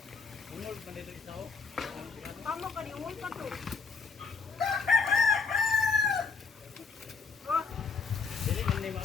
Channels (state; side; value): quieter; right; 5.1 dB